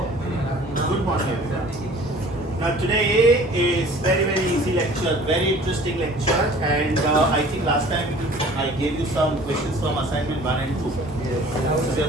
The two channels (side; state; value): both; normal; correlation 0.49